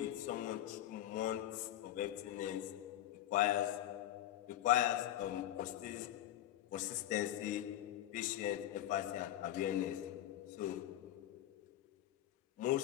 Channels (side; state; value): right; quieter; 12.9 dB